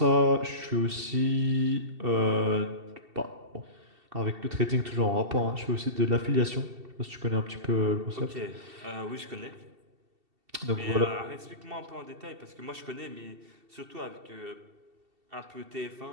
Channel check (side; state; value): left; late; 2.7 ms